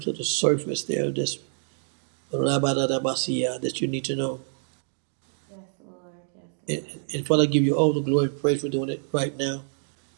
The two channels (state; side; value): silent; left; digital silence